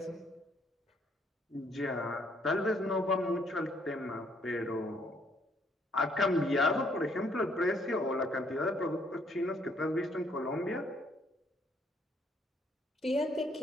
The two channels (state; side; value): normal; both; correlation 0.67